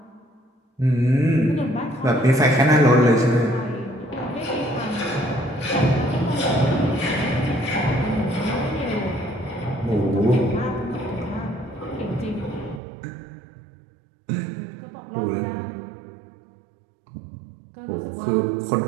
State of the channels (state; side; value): drops out; left; at 12.8 s